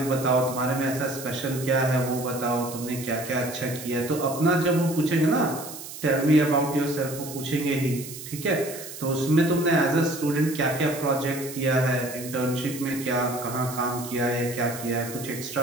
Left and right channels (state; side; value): noise; right; hiss, 12 dB below the sound